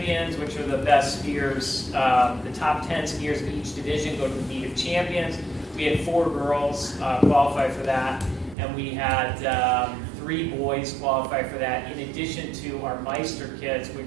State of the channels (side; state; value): left; drops out; at 8.6 s